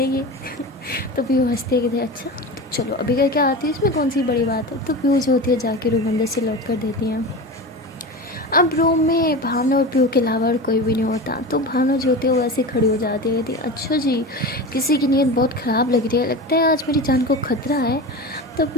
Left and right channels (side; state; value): both; normal; correlation 0.28